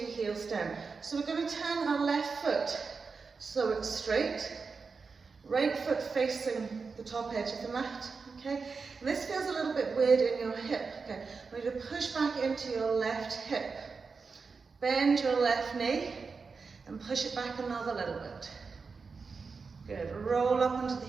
heels down. So we're going to turn our left foot so it's straight, right foot facing the top edge of the mat, okay? And this feels a little bit weird in your hip, okay? I want you to push back into your left hip, bend your left knee, and push it back another little bit. Good, roll up onto the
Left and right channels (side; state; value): left; quieter; 4.8 dB